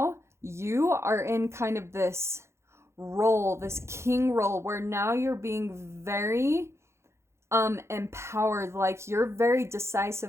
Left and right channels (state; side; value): late; left; 0.13 ms